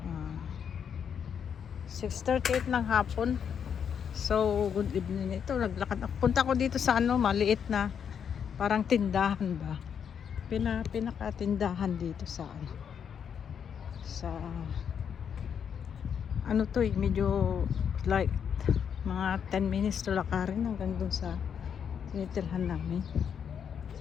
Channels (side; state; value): right; quieter; 7.7 dB